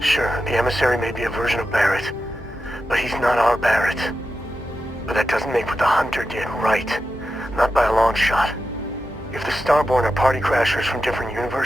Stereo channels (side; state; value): both; normal; correlation 0.90